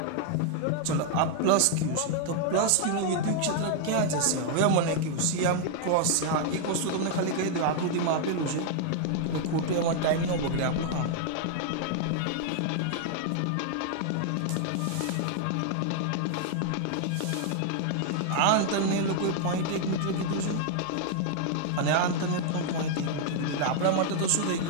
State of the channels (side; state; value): both; different; correlation 0.00